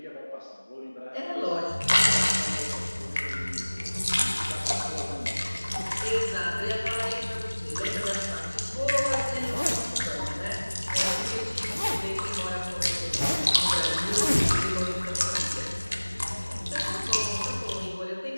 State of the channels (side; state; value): both; inverted; correlation -1.00